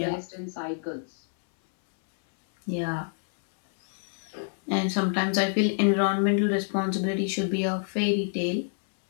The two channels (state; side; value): silent; right; 60 dB below the other